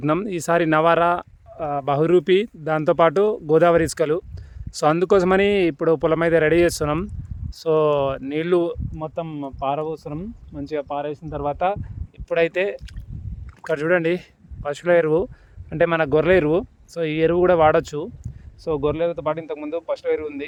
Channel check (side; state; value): both; identical; correlation 1.00